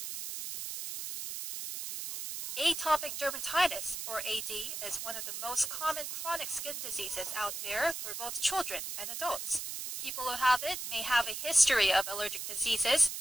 Atopic dermatitis, or AD, is one of the most common chronic skin diseases out there for both children and adults. People who have it may have a history of allergic diseases,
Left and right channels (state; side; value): noise; right; hiss, 6 dB below the sound